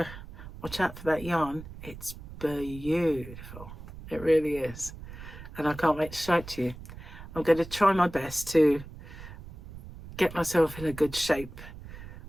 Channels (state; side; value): noise; right; rumble, 14 dB below the sound